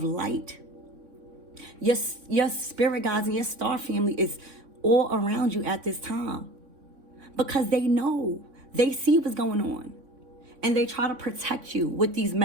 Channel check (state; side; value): late; left; 3.6 ms